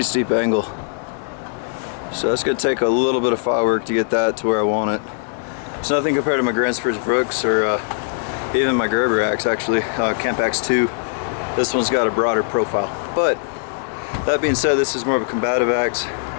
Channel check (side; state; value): right; silent; 65 dB below the other